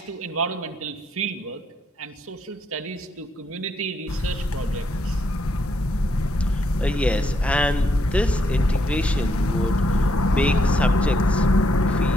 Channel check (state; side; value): normal; both; correlation 0.75